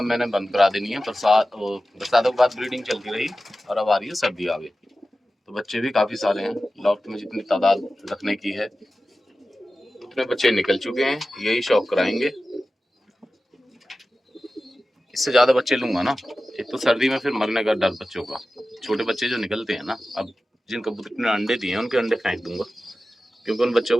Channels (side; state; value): both; normal; correlation 0.95